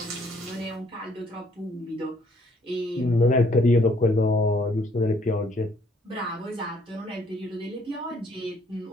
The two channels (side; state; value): both; normal; correlation 0.64